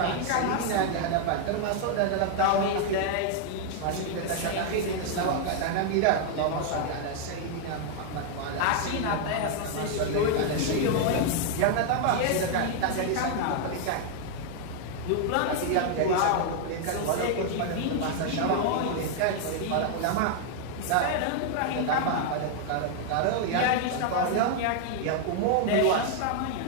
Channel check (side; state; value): both; different; correlation 0.00